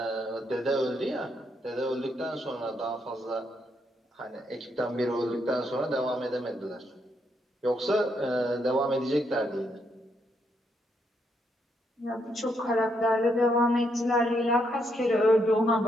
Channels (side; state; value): both; normal; correlation 0.77